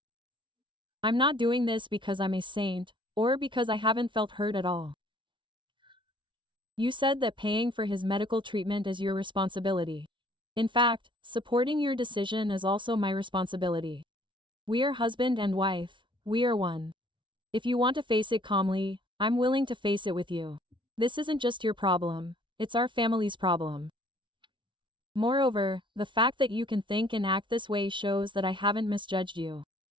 I'm not doing this because I'm a saint, or because I haven't felt hurt at all. You said that paying for his medical treatment is your responsibility. In fact, supporting your decision is also my responsibility. We are husband and wife, we are one. If you want to face it calmly, I'm willing to face it with you. This isn't just your problem, it's our family's problem. Moreover, the fact that you can think and act this way shows that I haven't misjudged you.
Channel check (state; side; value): late; left; 0.24 ms